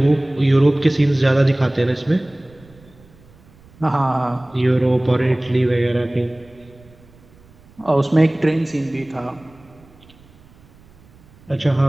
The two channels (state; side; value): noise; right; rumble, 27 dB below the sound